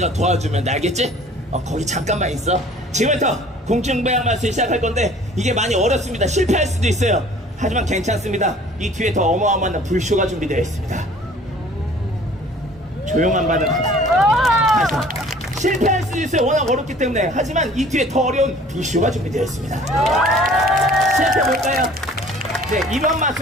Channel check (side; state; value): both; normal; correlation 0.50